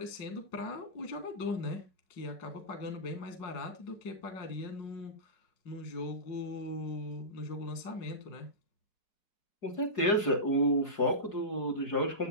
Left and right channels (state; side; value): late; right; 4.8 ms